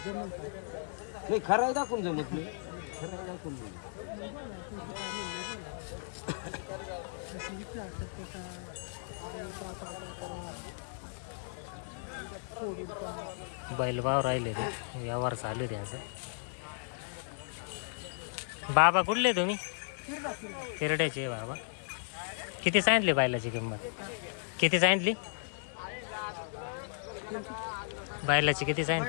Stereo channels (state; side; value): silent; right; 55 dB below the other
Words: जमल का नाही खरं दाखवून जमत नाही. खरं दाखवून नाही. बोला तुमचं काय म्हणणं बोला विचार बैलभाव राहिले ते व्यवहार चालू आहे त्यांचा. बाबा कुठले तुम्ही? तिरड्याचे बाबा. किती सांगितली बैलाची किंमत? किती सांगितली बैलाची? किती